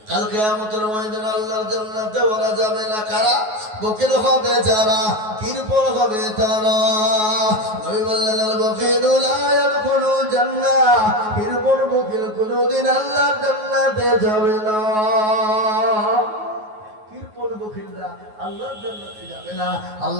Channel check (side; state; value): left; late; 9.4 ms